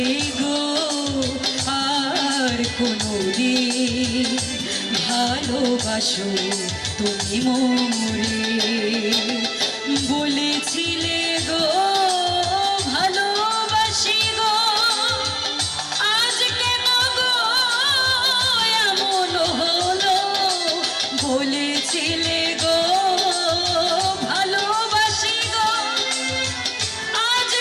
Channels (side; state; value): both; identical; correlation 1.00